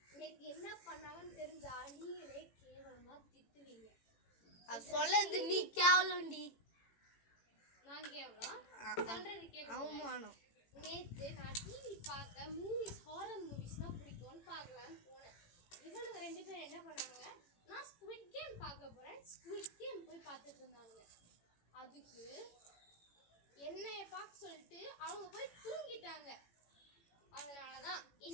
நேற்று என்ன பண்ணாங்கன்னு தெரிஞ்சா நீங்களே கேவலமா திட்டுவீங்க. அது சொல்லது நீ கேவலம்டி. நான் கேவலம் சொல்றது கேளு. அவமானம். நேற்று நான் டிவி பார்க்க மூவிஸ் ஹாரர் மூவிஸ்னா பிடிக்கும்னு பார்க்கலான்னு போனேன். இவனுங்க 2 பேரும் என்ன பண்ணாங்க, நான் ஸ்குவிட் கேம் பார்க்க போறேன் ஸ்குவிட் கேம் போய் பார்த்துட்டு இருந்தாங்க. அதுக்கு என்னைய பார்க்க சொல்லிட்டு அவங்க போய் தூங்கிட்டாங்க. அதனாலதான்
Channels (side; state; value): right; late; 18 ms